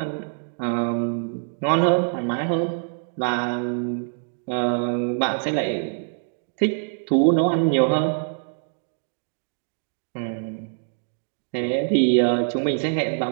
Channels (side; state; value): left; silent; digital silence